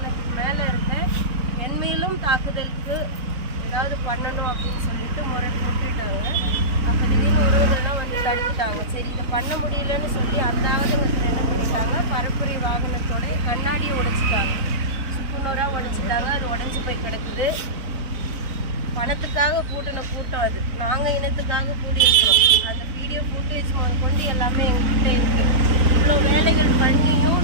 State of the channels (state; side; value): late; left; 4.0 ms